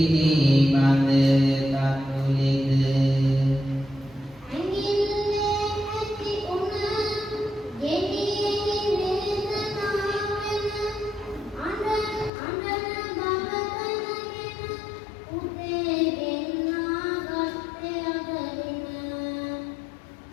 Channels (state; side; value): drops out; right; at 12.3 s